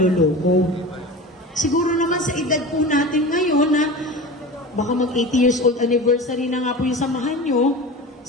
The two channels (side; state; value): both; normal; correlation 0.32